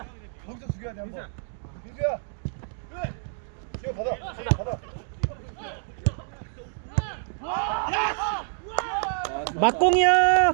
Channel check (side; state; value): left; silent; digital silence